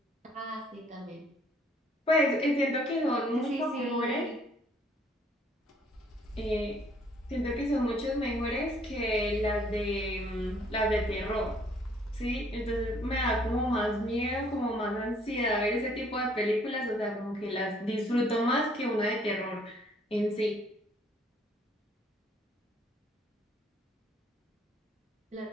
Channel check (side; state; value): both; normal; correlation 0.62